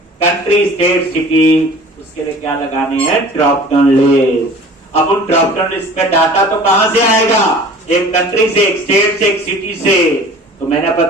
country state city, उसके लिए क्या लगाने हैं, ड्रॉप डाउन लिस्ट। अब उन ड्रॉप डाउन लिस्ट में डाटा तो कहां से आएगा, एक कंट्री से, एक स्टेट से, एक सिटी से। तो मैंने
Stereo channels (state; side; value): normal; both; correlation 0.44